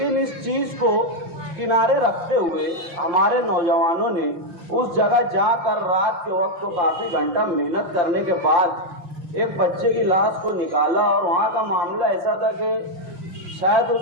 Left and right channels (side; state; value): left; late; 5.8 ms